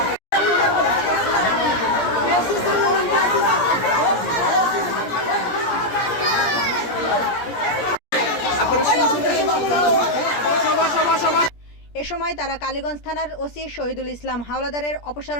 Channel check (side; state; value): right; late; 17 ms